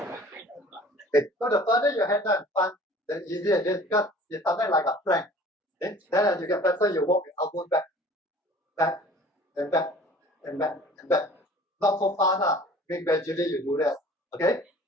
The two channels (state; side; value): normal; both; correlation 0.47